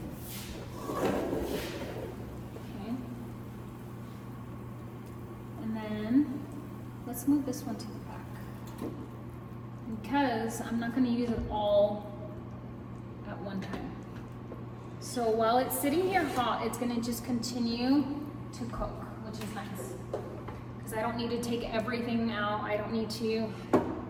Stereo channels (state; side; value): identical; both; correlation 1.00